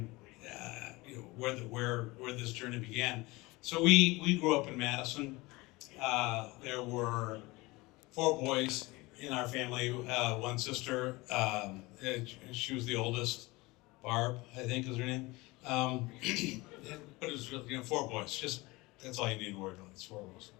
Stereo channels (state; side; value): quieter; right; 22.4 dB